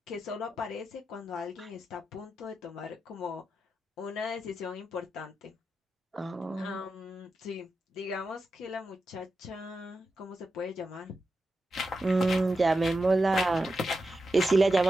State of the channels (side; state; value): both; normal; correlation 0.89